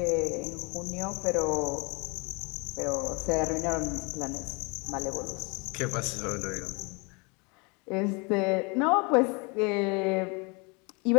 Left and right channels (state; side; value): quieter; right; 30.5 dB